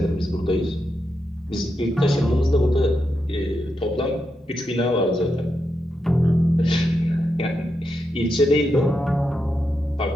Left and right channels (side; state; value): both; normal; correlation 0.85